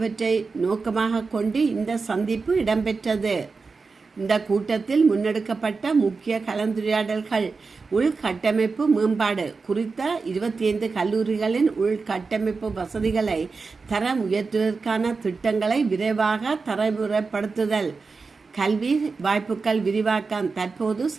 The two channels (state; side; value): quieter; left; 4.5 dB